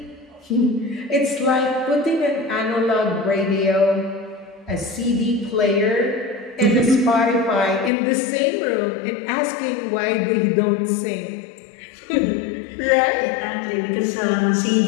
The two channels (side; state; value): right; drops out; at 7.9 s